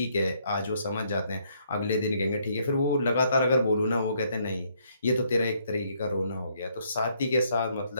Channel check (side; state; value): both; inverted; correlation -0.70